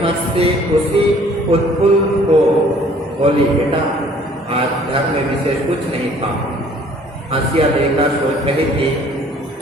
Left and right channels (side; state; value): both; normal; correlation 0.56